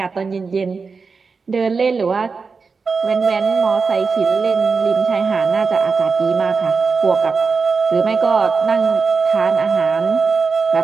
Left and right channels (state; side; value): quieter; left; 4.8 dB